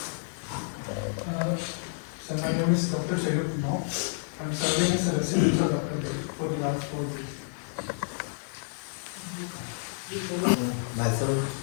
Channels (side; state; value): right; silent; 55 dB below the other